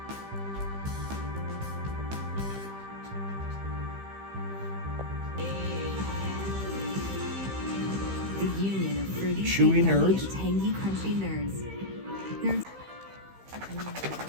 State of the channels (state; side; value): late; left; 15 ms